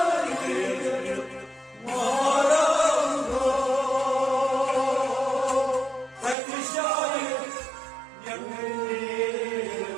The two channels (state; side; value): drops out; left; at 6.4 s